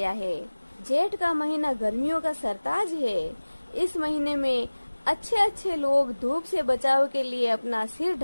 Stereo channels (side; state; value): both; inverted; correlation -1.00